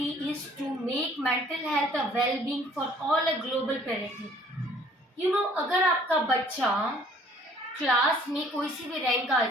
is to make mental health a well-being for all a global priority. अगर आपका बच्चा class में कोई सी भी रैंक आ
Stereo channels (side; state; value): both; normal; correlation 0.57